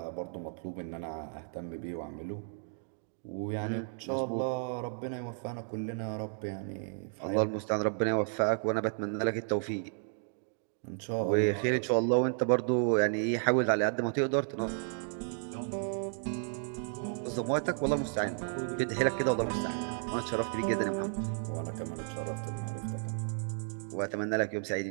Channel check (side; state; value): left; silent; digital silence